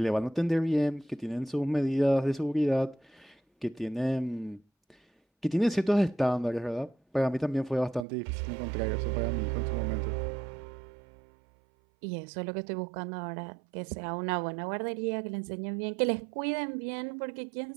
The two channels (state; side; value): drops out; left; at 8.1 s